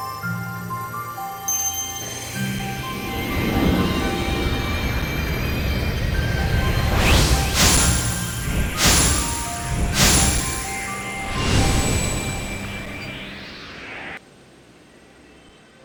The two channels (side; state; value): both; identical; correlation 1.00